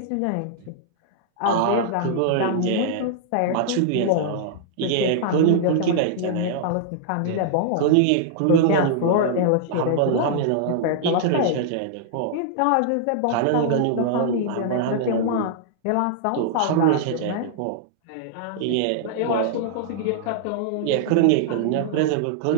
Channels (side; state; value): both; different; correlation -0.01